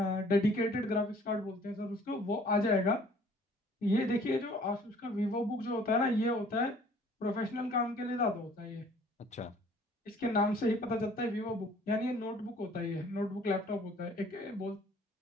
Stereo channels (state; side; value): normal; both; correlation 0.55